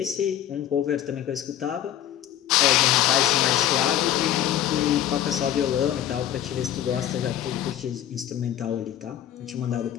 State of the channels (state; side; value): quieter; right; 11.4 dB